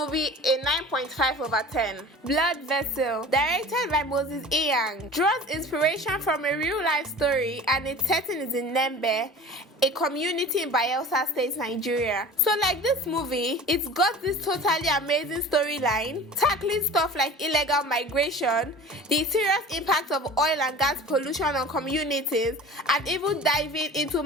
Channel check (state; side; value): normal; both; correlation 0.40